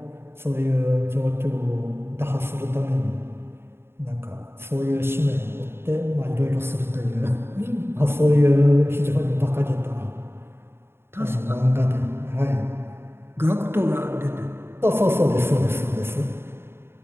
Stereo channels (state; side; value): late; left; 0.11 ms